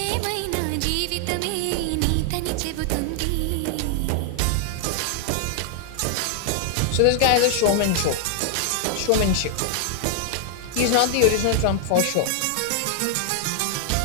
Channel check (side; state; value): both; different; correlation 0.00